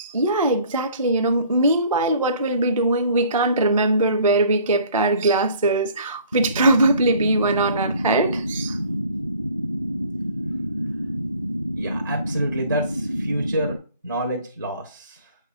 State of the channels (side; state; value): both; inverted; correlation -0.54